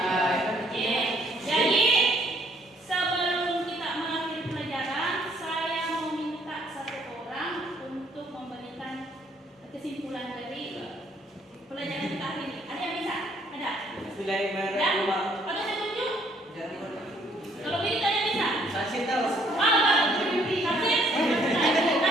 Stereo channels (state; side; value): normal; both; correlation 0.65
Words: Jadi sebelum kita mengakhiri pelajaran, saya mau minta satu orang untuk memberikan kesimpulan dari pelajaran kita hari ini. Ada yang bisa? Ada? Bismillahirrahmanirrahim. Ada yang tunjuk? Kalau bisa yang bisa. Kasih tahu.